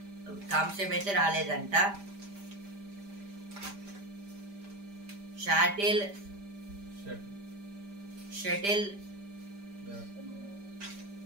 కాంస్యం అయితే రాలేదంట. షటిల్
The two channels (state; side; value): late; left; 5.0 ms